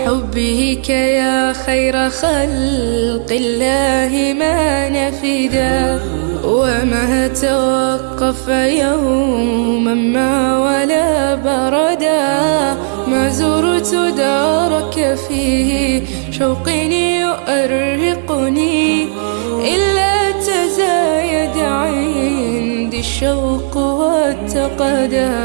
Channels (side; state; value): left; silent; digital silence